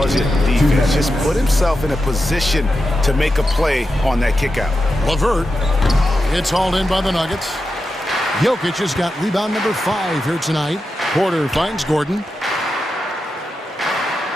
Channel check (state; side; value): normal; both; correlation 0.89